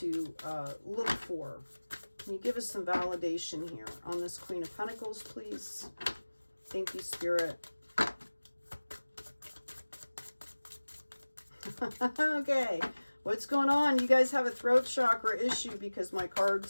look for? Can you give us some validation here on this Queen of Pentacles, please? Thank you, Spirit. Okay, what's going on? You guys have a throat chakra issue because my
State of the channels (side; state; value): both; inverted; correlation -1.00